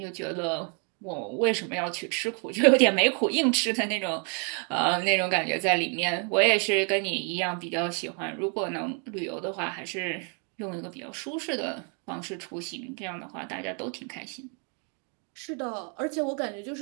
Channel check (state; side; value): quieter; left; 38.7 dB